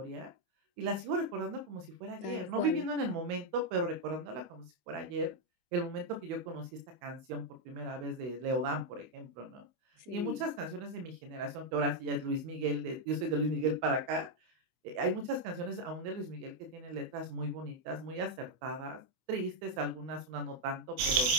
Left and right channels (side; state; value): left; late; 24 ms